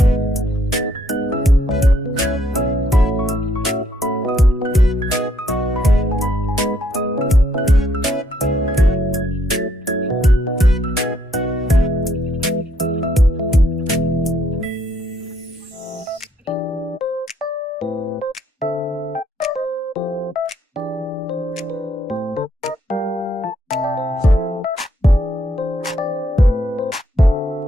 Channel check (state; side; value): normal; both; correlation 0.70